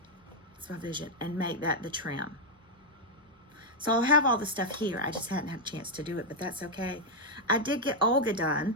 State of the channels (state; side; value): normal; both; correlation 0.00